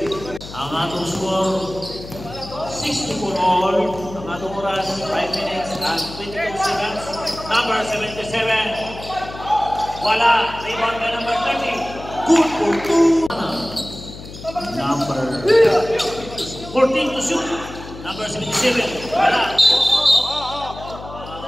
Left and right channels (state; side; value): noise; left; hum, 14 dB below the sound